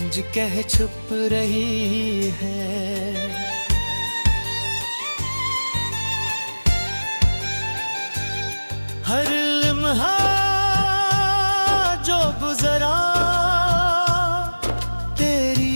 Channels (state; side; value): inverted; both; correlation -1.00